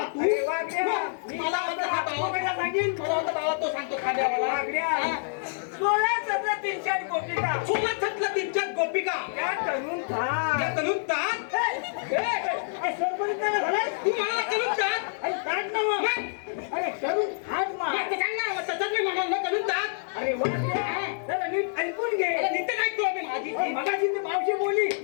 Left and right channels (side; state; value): right; silent; digital silence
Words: तू मला वाटतं हा बाबा सांगेल, मला वाटतं बाबा तो सांगतो खाद्यावाला. 16-17 गोपिका, 16-17 गोपिका त्या तरुण तात तू मला तरुण तात अरे तरुण हात मार सांग ना, तसंच मी म्हणाल तरुण तात. अरे वा, नीट ऐकून घे. नीट ऐकतो आम्ही. माझी मगाशी ती मावशी बोलली